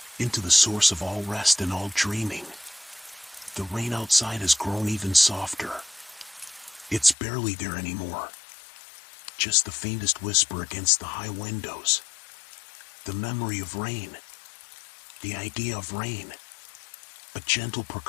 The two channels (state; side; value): drops out; right; at 7.2 s